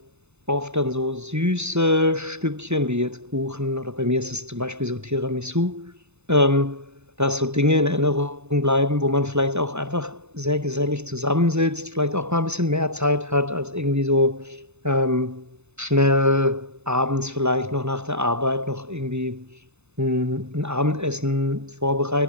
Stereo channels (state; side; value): late; left; 0.81 ms